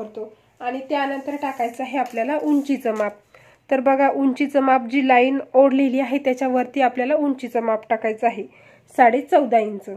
आणि त्यानंतर टाकायचं आहे आपल्याला उंचीचं माप. तर बघा, उंचीचं माप जी लाईन ओढलेली आहे त्याच्यावरती आपल्याला उंचीचं माप टाकायचं आहे 14.5 इंच.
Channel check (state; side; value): identical; both; correlation 1.00